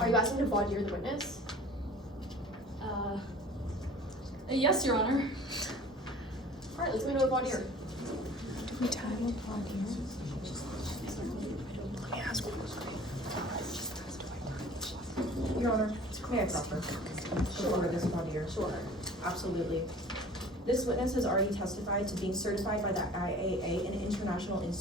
you asking to voir dire the witness? Yes, Your Honor. Alright, let's go into a voir dire. Your Honor, may I proffer? Before this voir dire? Sure. Absolutely. This witness has already testified to being certified by the IAA, an International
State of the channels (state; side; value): normal; both; correlation 0.45